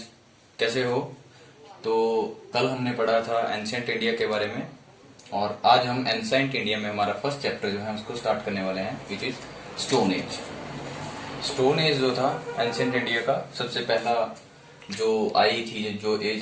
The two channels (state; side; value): identical; both; correlation 1.00